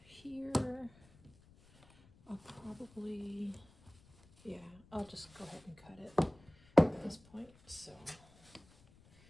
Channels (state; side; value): noise; left; rumble, 26 dB below the sound